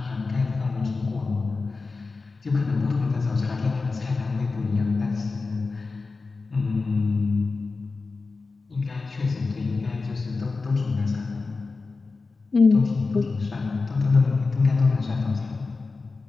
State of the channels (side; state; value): right; quieter; 4.0 dB